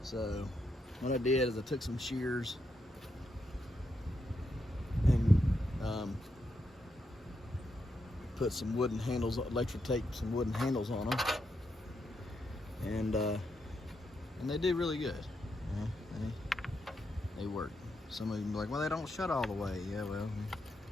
So what I did is I took some shears and put some wooden handles, electric tape, some wooden handles on them, and they did really good. They work. Some of you are like, well, they don't shut all the way. Yeah, well,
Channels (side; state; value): both; normal; correlation 0.82